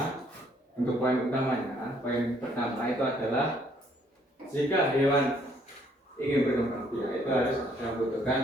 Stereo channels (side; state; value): both; normal; correlation 0.65